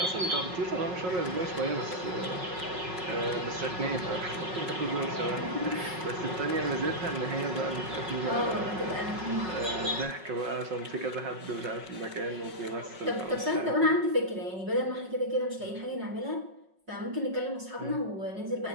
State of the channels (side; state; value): left; late; 5.4 ms